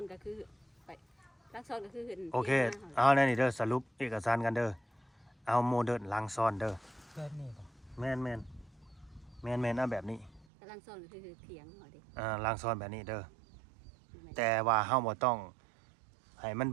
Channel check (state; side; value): drops out; left; at 10.5 s